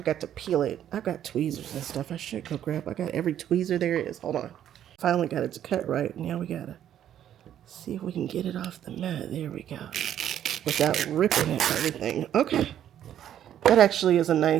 got to peel it. I've got tweezers and stuff. I should go grab. I got every tweezer there is. Hold on. Finally got it to cut right. Now we gotta see if we can get it off the mat. There we go. Without ripping it, everything. Okay. That actually is a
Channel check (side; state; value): left; quieter; 10.7 dB